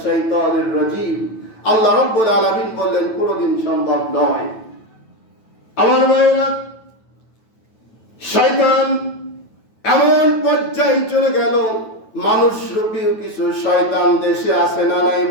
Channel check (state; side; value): late; right; 9.1 ms